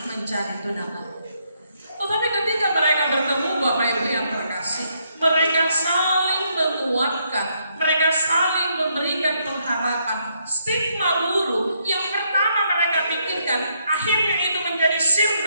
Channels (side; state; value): both; inverted; correlation -0.74